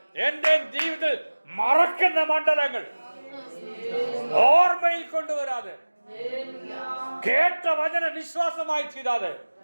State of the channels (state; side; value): inverted; both; correlation -1.00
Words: എന്റെ ജീവിതത്തിൽ മറക്കുന്ന മണ്ഡലങ്ങൾ ഓർമ്മയിൽ കൊണ്ടുവരാതെ, കേട്ട വചന വിശ്വാസമായി തീരാതെ,